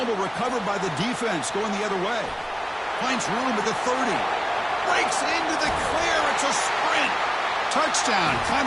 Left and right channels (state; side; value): identical; both; correlation 1.00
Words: recovered by the defense going the other way. Finds room at the 30. Breaks into the clear. It's a sprint. Touchdown,